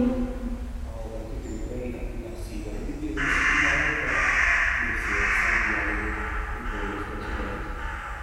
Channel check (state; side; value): identical; both; correlation 1.00